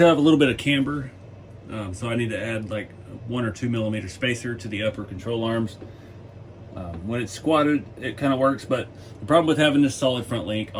have a little bit of camber, so I need to add like 1 or 2 millimeter spacer to the upper control arms. When it's squatted, it kind of works, but the problem with having this solid front link,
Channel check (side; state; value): both; identical; correlation 1.00